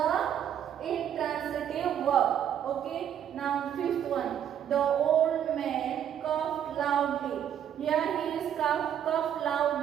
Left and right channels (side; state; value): left; quieter; 9.6 dB